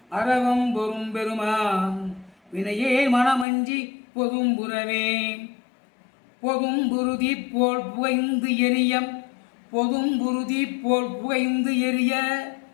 அறவம் பொறும் பெருமான் வினையே மனமஞ்சி பொதும்புறவே பொதும்புருதி போல் புகைந்து எரிய பொதும்புருதி போல் புகைந்து எரிய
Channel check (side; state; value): right; drops out; at 3.5 s